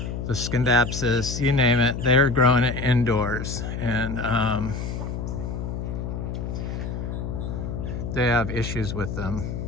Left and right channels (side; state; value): left; noise; hum, 5 dB below the sound